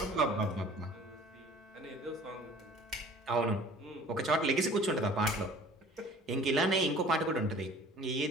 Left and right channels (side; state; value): both; normal; correlation 0.49